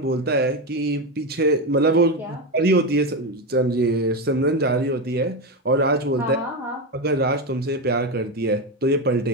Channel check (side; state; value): both; normal; correlation 0.13